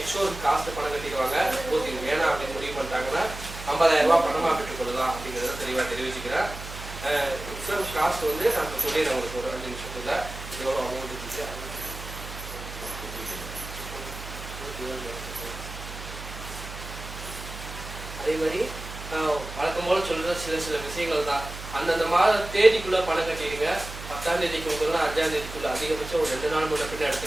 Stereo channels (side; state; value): right; noise; hum, 11 dB below the sound